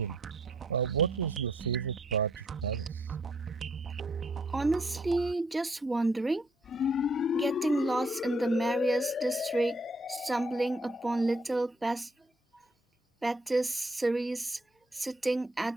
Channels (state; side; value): normal; both; correlation 0.68